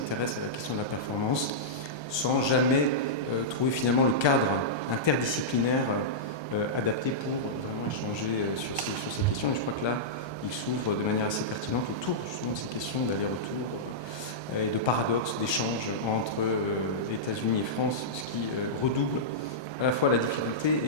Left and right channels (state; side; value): late; right; 1.3 ms